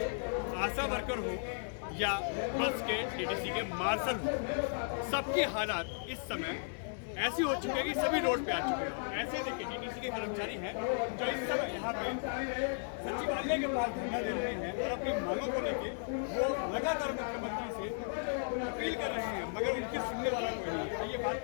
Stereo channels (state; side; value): silent; right; digital silence